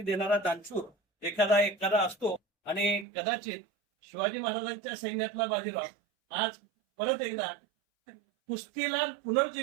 देणारा दानशूर एखादा असतो. आणि कदाचित शिवाजी महाराजांच्या सैन्यातला बाजीराव आज परत एकदा कुस्तीला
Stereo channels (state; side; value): drops out; left; at 3.1 s